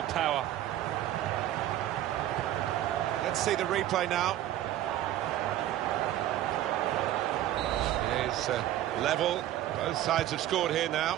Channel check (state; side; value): quieter; left; 13.1 dB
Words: power. Let's see the replay now. It is level. Both sides have scored here now.